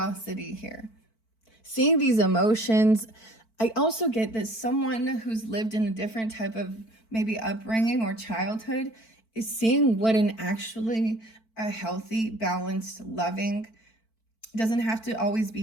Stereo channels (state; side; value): late; right; 4.5 ms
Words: here. Seeing these emotions. I also get that someone who's lived in a different type of maybe upbringing or childhood is seeing what an actually a healthy, balanced, loving, doesn't have to always